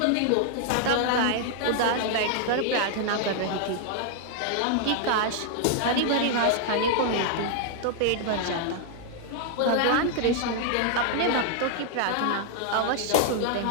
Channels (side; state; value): both; different; correlation 0.00